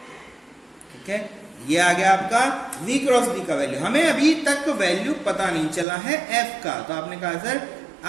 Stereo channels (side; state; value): left; drops out; at 5.9 s